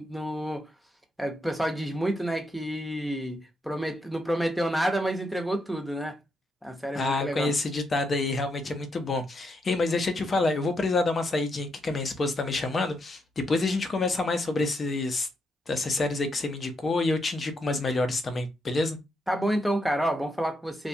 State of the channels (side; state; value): both; normal; correlation 0.80